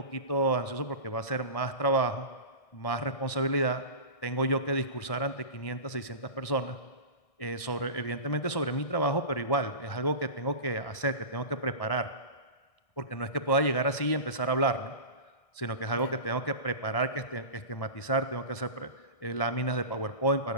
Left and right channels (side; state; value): right; late; 1.6 ms